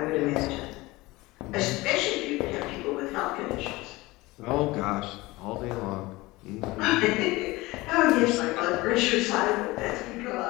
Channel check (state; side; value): quieter; right; 20.8 dB